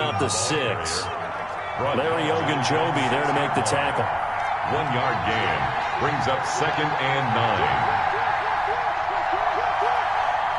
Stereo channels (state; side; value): identical; both; correlation 1.00